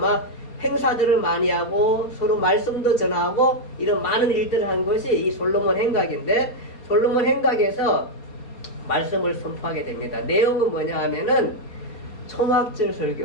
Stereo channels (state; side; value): late; right; 4.3 ms